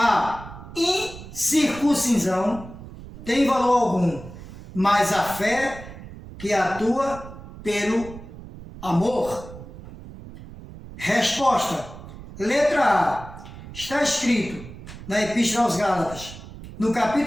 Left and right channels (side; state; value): right; noise; rumble, 15 dB below the sound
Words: incircuncisão tem valor algum, mas a fé que atua pelo amor. Resposta. Letra A. Está escrito na Epístola aos Gálatas, no